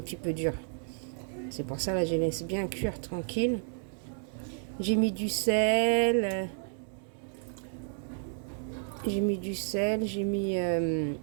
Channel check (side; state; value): left; silent; 55 dB below the other